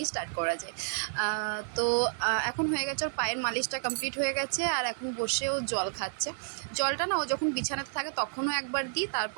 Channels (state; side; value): silent; left; digital silence